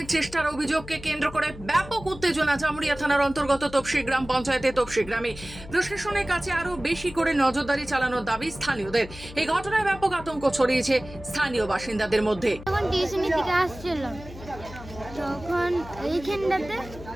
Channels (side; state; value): left; noise; hum, 15 dB below the sound